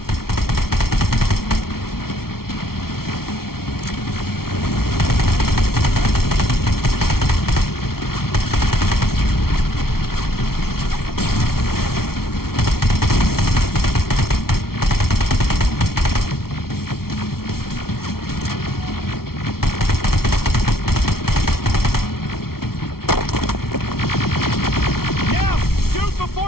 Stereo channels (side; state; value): right; late; 0.94 ms